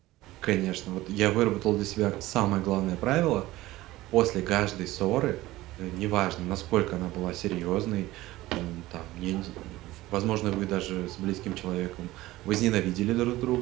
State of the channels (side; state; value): left; quieter; 17.4 dB